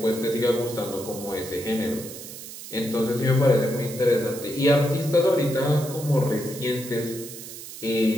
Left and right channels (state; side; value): noise; right; hiss, 12 dB below the sound